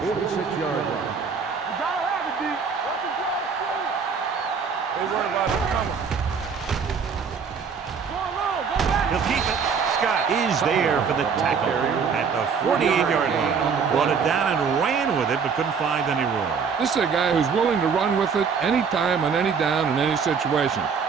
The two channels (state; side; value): quieter; left; 6.0 dB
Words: 46-yard line. You gotta have it, D. What's the draw, school? They worry about it coming. Go along, go back. He'll keep it. Scott is there for the tackle at the 48-yard line. Brought it down and ran with it, but couldn't find any room. This is a guy who's willing to run with it anytime, on any down, in any situation.